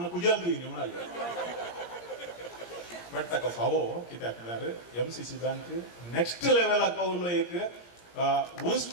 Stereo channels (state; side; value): late; right; 17 ms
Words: कुजाल तुयें म्हणाले. बट ताका फावो कित्याक म्हळ्यार MCC बँक नेक्स्ट लेवलाक पावलो. एक